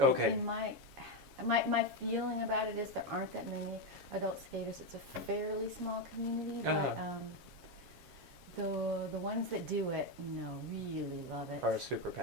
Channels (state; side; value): late; left; 7.3 ms